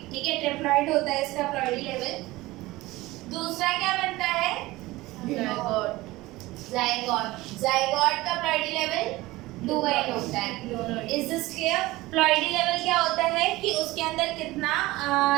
ठीक है। ट्रिप्लॉइड होता है इसका प्लॉइडी लेवल। दूसरा क्या बनता है? जायगोट। जायगोट का प्लॉइडी लेवल 2n होता है। Is this clear? Ploidy level क्या होता है कि उसके अंदर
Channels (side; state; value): left; quieter; 19.2 dB